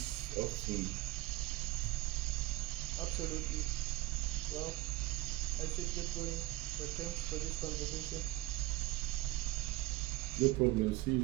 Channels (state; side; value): quieter; left; 17.3 dB